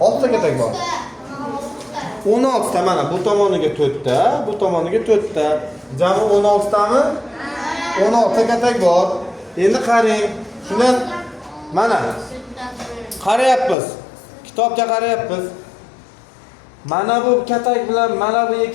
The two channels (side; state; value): right; drops out; at 13.8 s